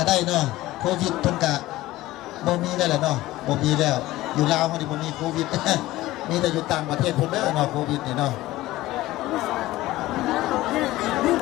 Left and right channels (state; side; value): quieter; right; 17.1 dB